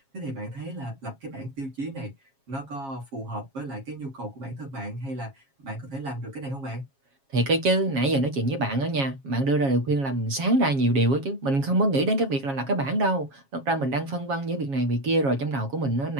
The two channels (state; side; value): late; left; 7.3 ms